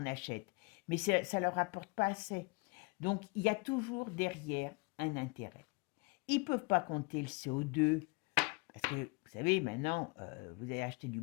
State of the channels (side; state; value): right; quieter; 28.7 dB